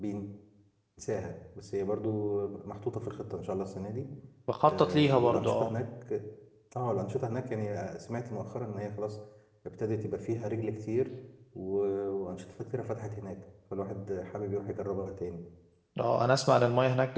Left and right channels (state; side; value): identical; both; correlation 1.00